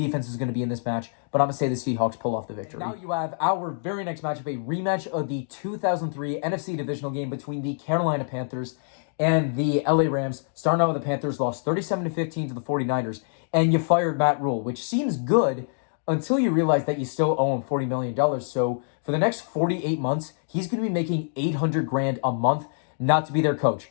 is going to be in this match, but I'm going to say the Seahawks pull off the victory. And now you have our very next matchup, a rematch of the 2003 NFC divisional game between the Carolina Panthers and the LA Rams. Starting out with the Panthers, lost 37-15 to the 49ers, and you fired Matt Rule, which seems good until you realize that you still owe him $40 million. So for the next 48 months, he's going to be making $800,000 a month not to be their coach.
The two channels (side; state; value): right; silent; digital silence